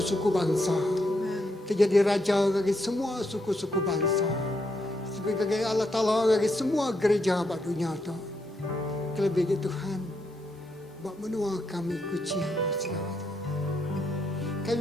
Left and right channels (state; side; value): normal; both; correlation 0.79